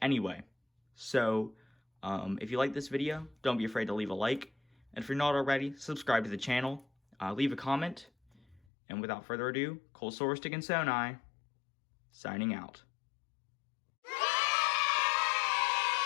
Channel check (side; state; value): right; drops out; at 8.7 s